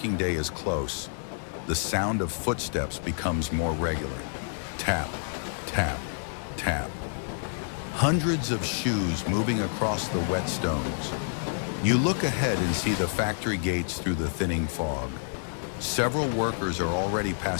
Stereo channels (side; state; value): right; silent; digital silence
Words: day is close. The sound of footsteps becomes more regular. Tap, tap, tap. Hundreds of shoes moving across the wet stones. You look ahead and see the factory gates through the thinning fog. Several workers are already